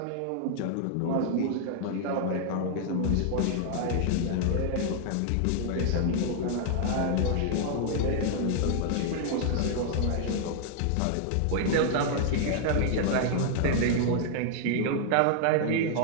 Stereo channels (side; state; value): both; different; correlation 0.00